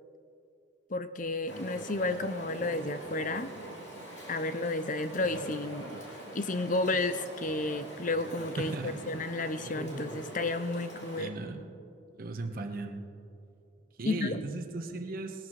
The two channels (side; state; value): both; normal; correlation 0.27